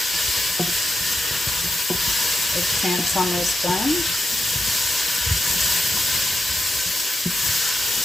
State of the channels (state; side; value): normal; both; correlation 0.87